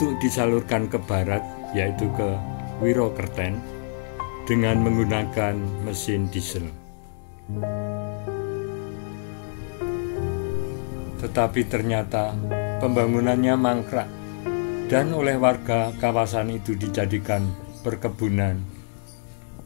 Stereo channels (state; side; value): silent; right; digital silence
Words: disalurkan ke barat, yaitu ke Wirokerten, dengan menggunakan mesin diesel. Tetapi ternyata pembangunannya mangkrak dan oleh warga kawasan itu dijadikan perkebunan,